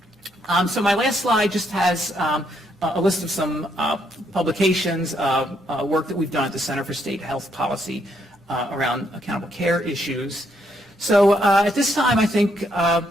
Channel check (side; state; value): both; normal; correlation 0.74